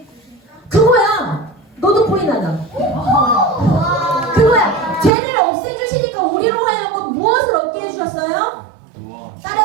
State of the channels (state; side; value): drops out; left; at 5.1 s